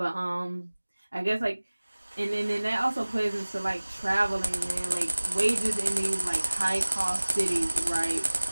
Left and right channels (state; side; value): inverted; both; correlation -1.00